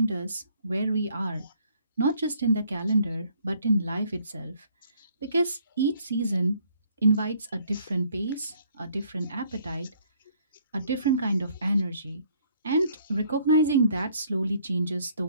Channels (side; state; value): both; inverted; correlation -0.63